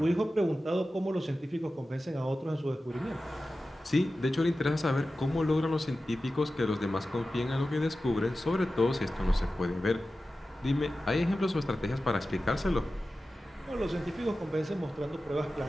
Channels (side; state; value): both; normal; correlation 0.94